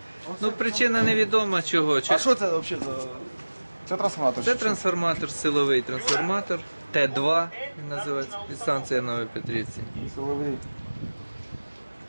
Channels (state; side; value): inverted; both; correlation -1.00